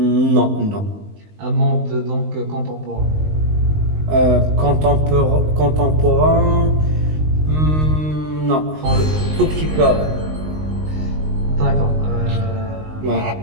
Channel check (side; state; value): left; late; 19 ms